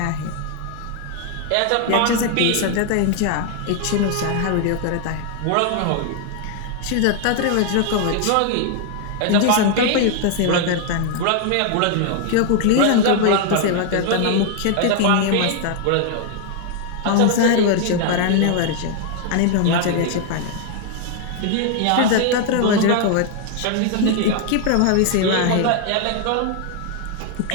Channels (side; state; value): both; different; correlation 0.00